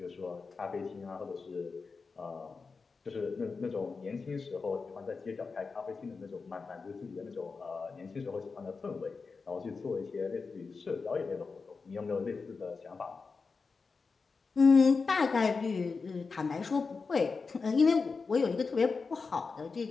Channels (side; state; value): right; quieter; 4.6 dB